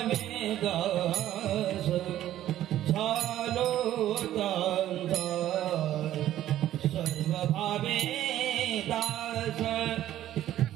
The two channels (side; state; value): left; quieter; 12.8 dB